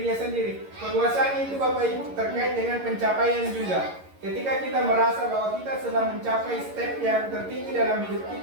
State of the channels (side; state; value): left; late; 11 ms